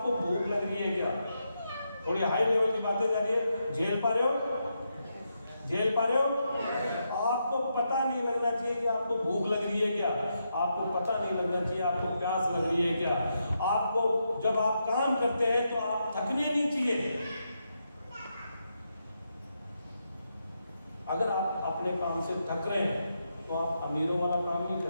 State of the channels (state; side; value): inverted; both; correlation -0.83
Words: भूख लग रही है क्या। थोड़ी हाई लेवल की बातें जा रही है, झेल पा रहे हो? झेल पा रहे हो? आपको पता नहीं लगना चाहिए कि आपको भूख लग रही है क्या, आपको पता नहीं लगना चाहिए आपको प्यास लग रही है क्या। आपको जब आप काम करते हैं तो आप थकने नहीं चाहिए। अगर आप अपने काम से थक रहे हैं तो आप अमीरों वाला काम नहीं